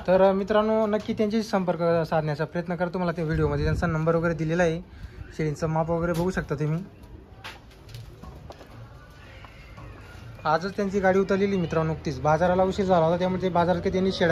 तर मित्रांनो नक्की त्यांच्याशी संपर्क साधण्याचा प्रयत्न करा. तुम्हाला त्या व्हिडिओमध्ये त्यांचा नंबर वगैरे दिलेला आहे. शेळींचं माप वगैरे बघू शकता तुम्ही. आजच त्यांची गाडी उतरलेली मित्रांनो. नुकतीच बाजाराला उशीर झाला होता त्यामुळे ते बाजारात काही त्यांनी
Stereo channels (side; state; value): both; identical; correlation 1.00